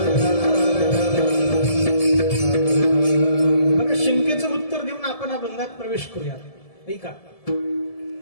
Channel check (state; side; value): late; right; 1.7 ms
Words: बघा, शंकेचं उत्तर देऊन आपण अभंगात प्रवेश करूया. नाही का?